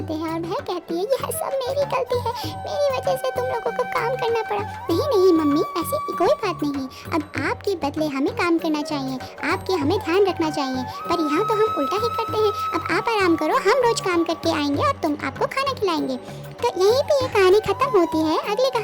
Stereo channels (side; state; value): both; identical; correlation 1.00